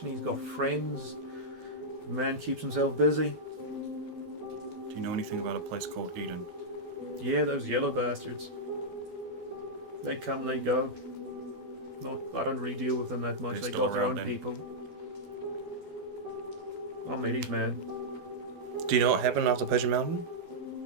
he's got friends. The man keeps himself busy. Do you know anything about a place called Eden? Yeah, those yellow bastards. They come, they go. I don't really deal with them that much. They're They still got their own around then. people. I'm Eddie's man. Do you know what happened after Pigeon Mountain?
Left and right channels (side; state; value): left; late; 12 ms